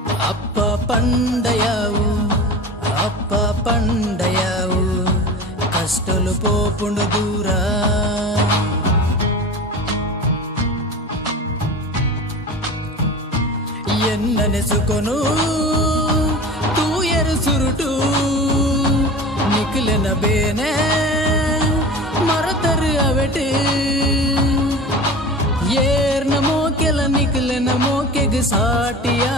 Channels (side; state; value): both; normal; correlation 0.34